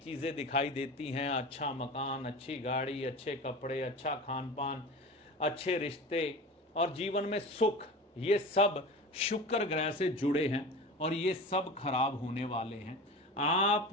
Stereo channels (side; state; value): both; normal; correlation 0.32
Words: दिखाई देती हैं, अच्छा मकान, अच्छी गाड़ी, अच्छे कपड़े, अच्छा खान पान, अच्छे रिश्ते और जीवन में सुख, ये सब शुक्र ग्रह से जुड़े हैं और ये सब खराब होने वाले हैं। आप